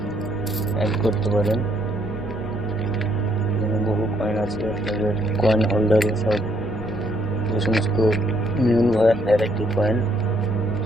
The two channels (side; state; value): left; noise; rumble, 16 dB below the sound